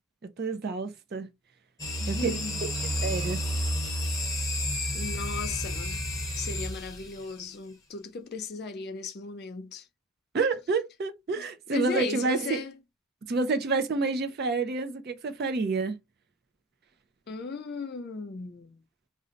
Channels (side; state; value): both; normal; correlation 0.38